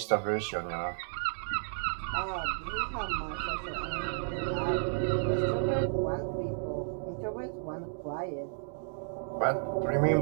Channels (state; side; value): silent; left; digital silence